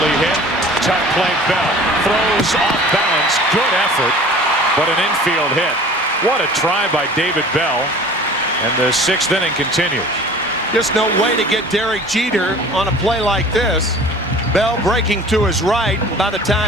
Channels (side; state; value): both; normal; correlation 0.45